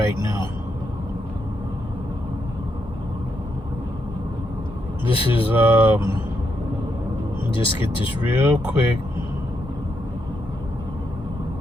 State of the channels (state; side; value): normal; both; correlation 0.80